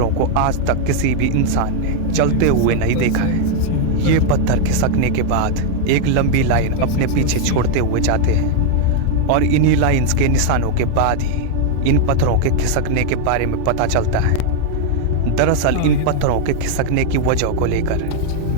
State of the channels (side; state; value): both; different; correlation 0.00